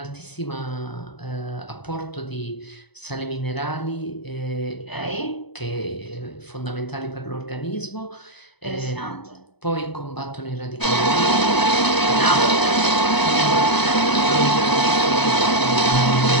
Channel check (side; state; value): right; late; 0.99 ms